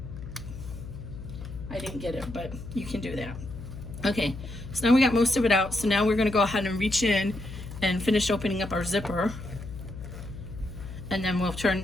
I didn't get it, but you can do that. Okay, so now we got most of it out, so now we're gonna go ahead and reach in and finish opening up our zipper. And then we'll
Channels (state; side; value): noise; left; hum, 11 dB below the sound